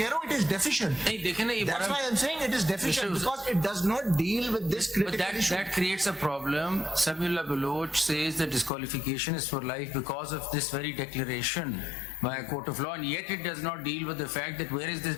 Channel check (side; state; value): right; drops out; at 8.7 s